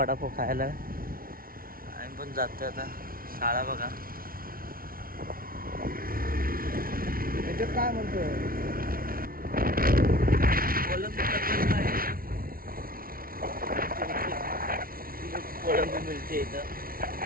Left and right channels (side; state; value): left; late; 0.43 ms